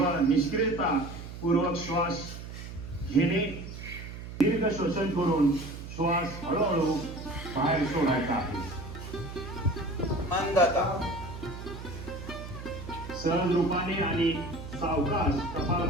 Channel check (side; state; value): right; noise; hum, 11 dB below the sound